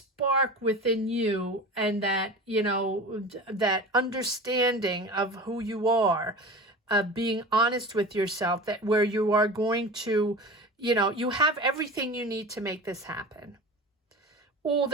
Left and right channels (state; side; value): normal; both; correlation 0.33